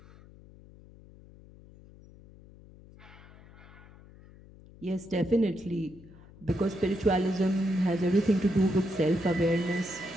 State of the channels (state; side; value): noise; left; hum, 22 dB below the sound